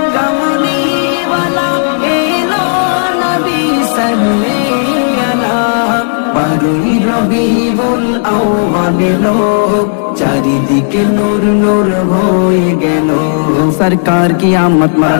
কামলিওয়ালা এলো নবী সাল্লে আলা। বারুই রবিউল আউয়াল এলো, চারিদিকে নূর নূর হয়ে গেল। সরকার কি আমত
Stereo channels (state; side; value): silent; right; digital silence